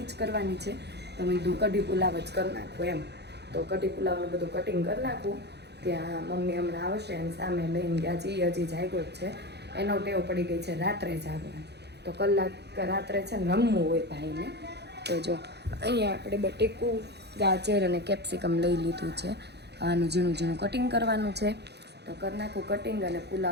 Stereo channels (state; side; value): late; left; 0.49 ms